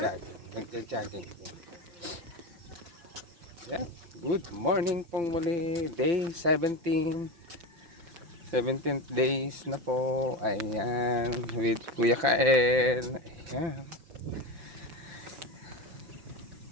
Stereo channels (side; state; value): left; late; 5.5 ms